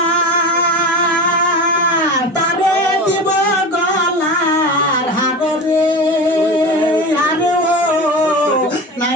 তারে দিব গলার হার রে আরে ও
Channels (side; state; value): both; normal; correlation 0.29